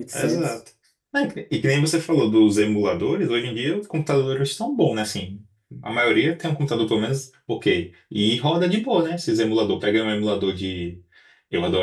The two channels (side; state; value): both; identical; correlation 1.00